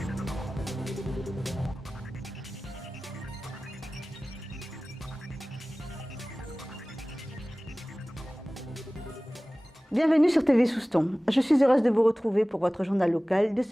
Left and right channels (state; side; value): normal; both; correlation 0.98